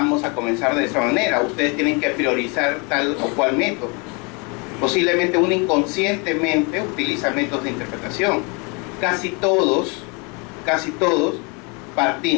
a comenzar de esa manera. Ustedes tienen que priorizar tal o cual método. Posiblemente uno inconscientemente utiliza métodos de interpretación. Casi todos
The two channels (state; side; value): quieter; right; 31.4 dB